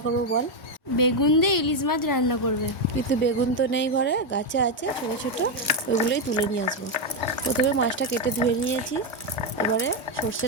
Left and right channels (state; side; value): normal; both; correlation 0.04